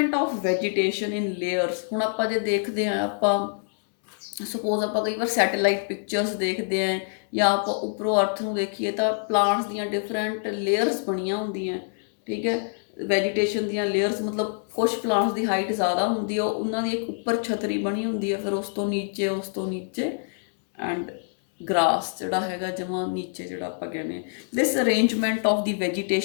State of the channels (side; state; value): right; silent; 61 dB below the other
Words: of vegetation in layers. ਹੁਣ ਆਪਾਂ ਜੇ ਦੇਖਦੇ ਹਾਂ, ਆਪਾਂ ਸਪੋਜ਼ ਆਪਾਂ ਕਈ ਵਾਰ ਸੈਟੇਲਾਈਟ ਪਿਕਚਰਸ ਦੇਖਦੇ ਹਾਂ ਜਾਂ ਆਪਾਂ ਉੱਪਰੋਂ ਅਰਥ ਨੂੰ ਦੇਖੀਏ ਤਾਂ ਪਲਾਂਟਸ ਦੀਆਂ ਡਿਫਰੈਂਟ ਲੇਅਰਸ ਬਣੀਆਂ ਹੁੰਦੀਆਂ, ਠੀਕ ਹੈ, ਵੈਜੀਟੇਸ਼ਨ ਦੀਆਂ ਲੇਅਰਸ। ਮਤਲਬ ਕੁਛ ਪਲਾਂਟਸ ਦੀ ਹਾਈਟ ਜ਼ਿਆਦਾ ਹੁੰਦੀ ਹੈ, ਉਹਨਾਂ ਦੀ ਇੱਕ ਉੱਪਰ ਛਤਰੀ ਬਣੀ ਹੁੰਦੀ ਹੈ, ਫਿਰ ਉਸ ਤੋਂ ਨੀਚੇ ਐਂਡ ਗ੍ਰਾਸ ਜਿਹੜਾ ਹੈਗਾ ਜਮਾਂ ਨੀਚੇ, ਜਿਹੜਾ ਆਪਾਂ ਕਹਿੰਦੇ ਹਾਂ this arrangement of the